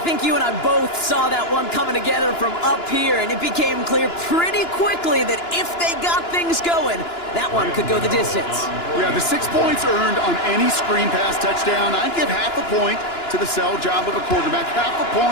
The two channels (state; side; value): late; right; 2.9 ms